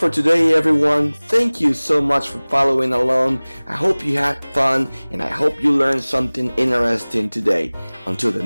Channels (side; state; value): both; inverted; correlation -1.00